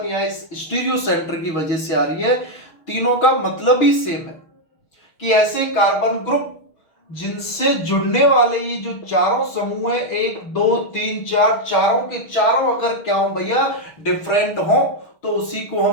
या इस स्टीरियो सेंटर की वजह से आ रही है। तीनों का मतलब ही सेम है कि ऐसे कार्बन ग्रुप जिनसे जुड़ने वाले ये जो चारों समूह है, 1 2 3 4, चारों के चारों अगर क्या हो भैया डिफरेंट हो तो उसी को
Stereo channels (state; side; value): late; right; 6.4 ms